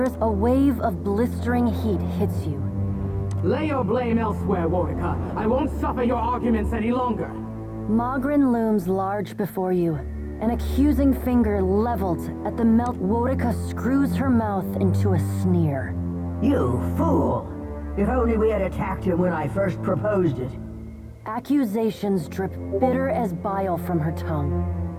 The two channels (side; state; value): both; identical; correlation 1.00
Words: is a wave of blistering heat hits you. Lay your blame elsewhere, Warwicker. I won't suffer your arguments any longer. Mogren looms large before you, an accusing finger leveled at the melt. Warwicker screws her mouth into a sneer. You fool! If only we had attacked him when I first proposed it. Accusations drip bitter as bile from her tongue.